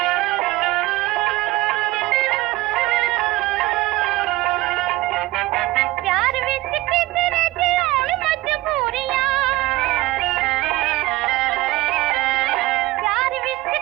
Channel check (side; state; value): left; quieter; 18.7 dB